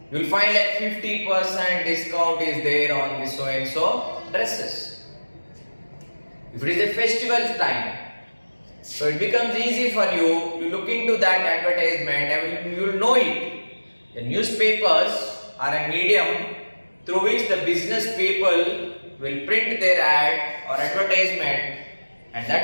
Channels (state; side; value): inverted; both; correlation -1.00